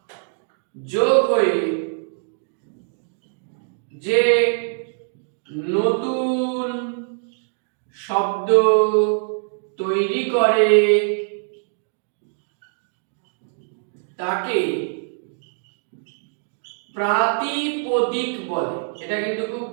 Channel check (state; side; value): silent; left; digital silence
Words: যোগ হয়ে যে নতুন শব্দ তৈরি করে তাকে প্রাতিপদিক বলে। এটা কিন্তু খুব